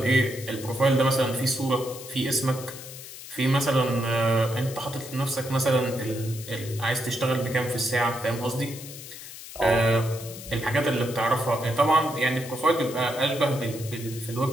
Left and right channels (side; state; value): left; noise; hiss, 13 dB below the sound